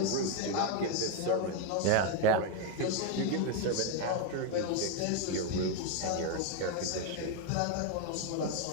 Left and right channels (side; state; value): both; different; correlation 0.02